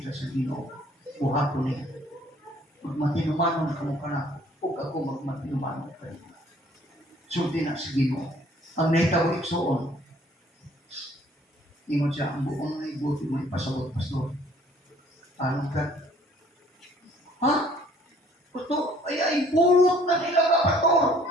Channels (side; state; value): both; normal; correlation 0.58